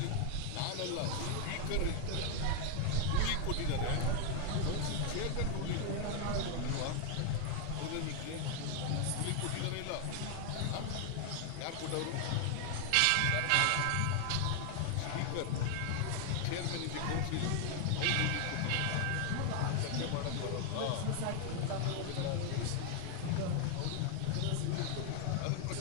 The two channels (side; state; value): both; different; correlation 0.00